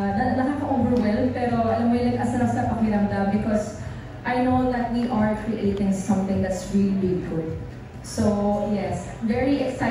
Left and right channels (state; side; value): identical; both; correlation 1.00